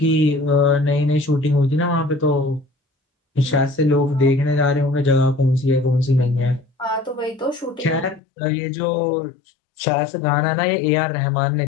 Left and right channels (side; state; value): right; drops out; at 8.2 s